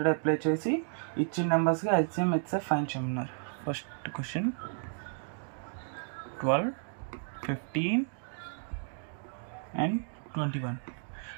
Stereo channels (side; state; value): left; silent; 56 dB below the other